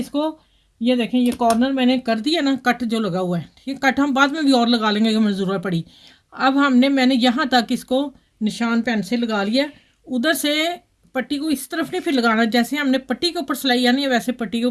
ये देखें, ये कॉर्नर मैंने कर दिया ना, कट जो लगा हुआ है, ठीक है। कट हम बाद में भी और लगा लेंगे अगर हमें ज़रूरत पड़ी। अब मैंने यहाँ तक इसको निशान पेन से लगा लिया। उधर से पट्टी को इस तरफ नहीं फिर लगाना, जैसे हमने पट्टी के ऊपर सिलाई आनी है वैसे पट्टी के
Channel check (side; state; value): both; identical; correlation 1.00